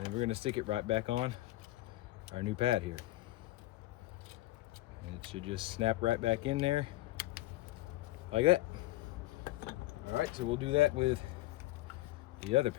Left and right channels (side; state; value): right; quieter; 17.2 dB